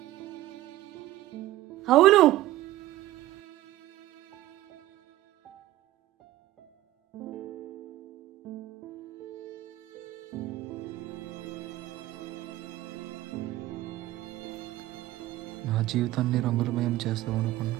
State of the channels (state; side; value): quieter; left; 15.8 dB